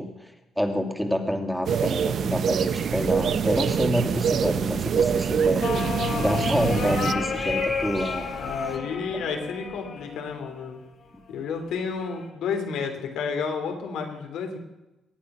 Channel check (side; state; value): both; normal; correlation 0.78